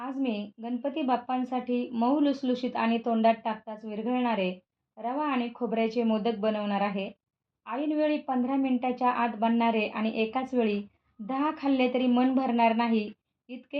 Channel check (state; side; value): identical; both; correlation 1.00